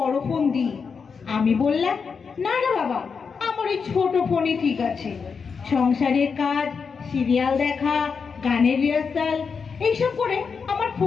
ফোন দিই। আমি বললাম, না না বাবা, আমার ওই ছোট ফোনই ঠিক আছে। সংসারের কাজ, সিরিয়াল দেখা, গানের রিহার্সাল এইসব করে আমার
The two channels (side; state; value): right; quieter; 5.7 dB